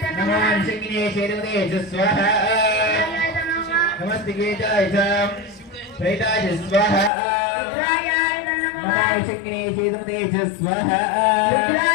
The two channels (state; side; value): drops out; right; at 7.1 s